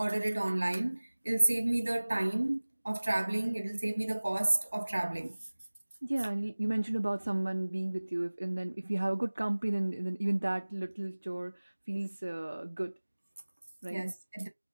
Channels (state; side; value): inverted; both; correlation -1.00